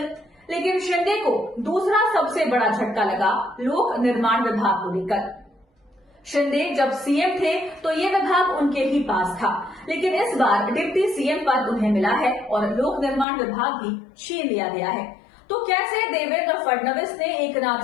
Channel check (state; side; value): drops out; right; at 13.2 s